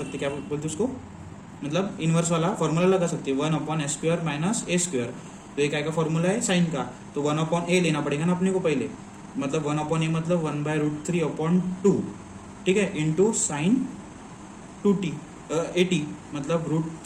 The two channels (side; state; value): both; identical; correlation 1.00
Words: क्या बोलते उसको, मतलब इनवर्स वाला फॉर्मूला लगा सकते हैं 1/s² माइनस a²। तो ये काय का फॉर्मूला है साइन का, तो 1/a लेना पड़ेगा ना अपने को पहले, मतलब 1/a मतलब 1/√3/2, ठीक है, इंटू साइन 2t 80 मतलब